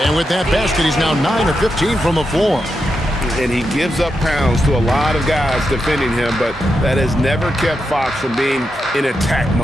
And with that basket, he's now 9 of 15 from the floor. And he gives up pounds to a lot of guys defending him, but that has never kept Fox from being in attack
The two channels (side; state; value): both; normal; correlation 0.86